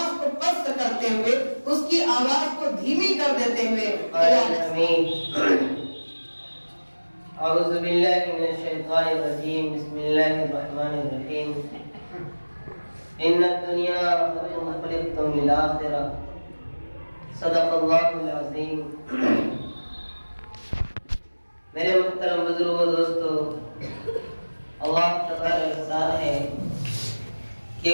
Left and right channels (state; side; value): inverted; both; correlation -1.00